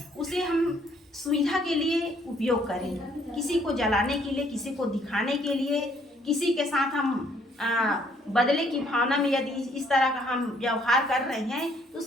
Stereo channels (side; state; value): both; normal; correlation 0.65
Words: उसे हम सुविधा के लिए उपयोग करें। किसी को जलाने के लिए, किसी को दिखाने के लिए, किसी के साथ हम बदले की भावना में यदि इस तरह का हम व्यवहार कर रहे हैं तो